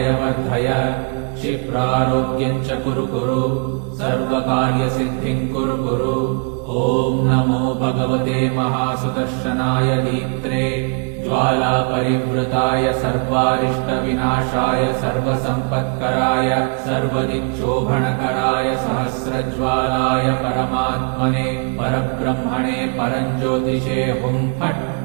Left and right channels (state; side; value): quieter; left; 36.5 dB